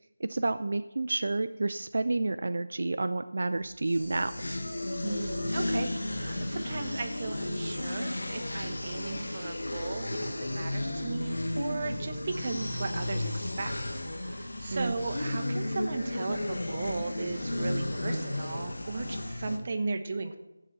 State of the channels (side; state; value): both; inverted; correlation -0.96